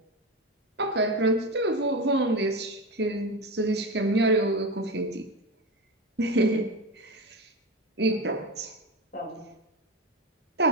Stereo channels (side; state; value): both; normal; correlation 0.20